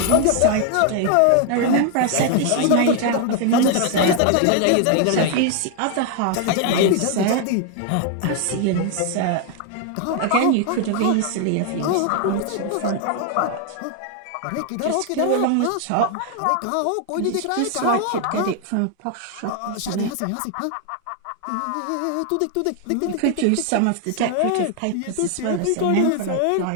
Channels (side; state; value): both; different; correlation 0.00